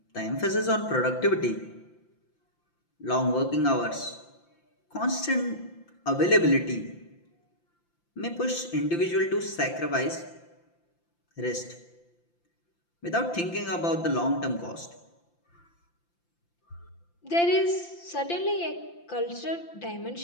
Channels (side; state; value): right; late; 5.8 ms